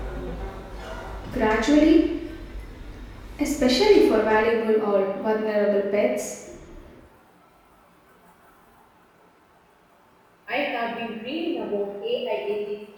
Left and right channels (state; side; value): identical; both; correlation 1.00